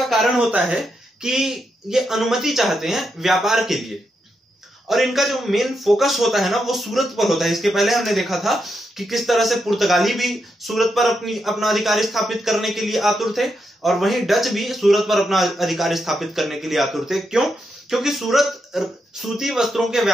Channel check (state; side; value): normal; both; correlation 0.83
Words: कारण होता है कि ये अनुमति चाहते हैं व्यापार के लिए और इनका जो मेन फोकस होता है ना वो सूरत पर होता है। इसके पहले हमने देखा था कि किस तरह से पुर्तगाली भी सूरत पर अपना अधिकार स्थापित करने के लिए आतुर थे और वहीं डच भी सूरत पर अपना अधिकार स्थापित करने के लिए आतुर थे। क्यों? क्योंकि सूरत सूती वस्त्रों के